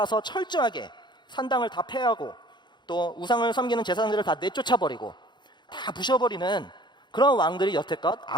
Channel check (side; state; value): right; late; 0.22 ms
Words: 철저하게 산당을 다 폐하고 또 우상을 섬기는 제사장들을 다 내쫓아버리고 다 부셔버리는 그런 왕들이 여태껏